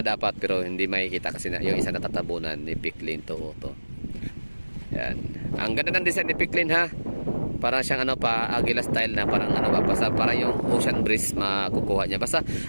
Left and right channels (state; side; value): inverted; both; correlation -1.00